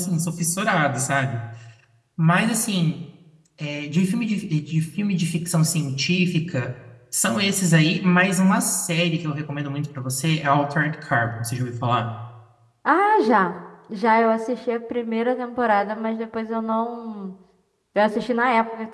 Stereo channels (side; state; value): both; identical; correlation 1.00